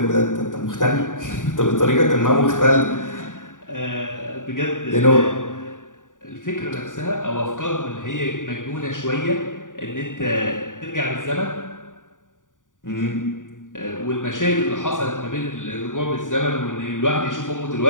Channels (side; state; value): right; late; 0.88 ms